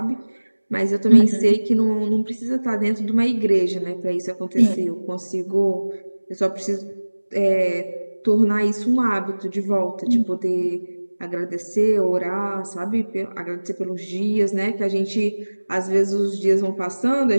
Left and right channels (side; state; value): both; inverted; correlation -1.00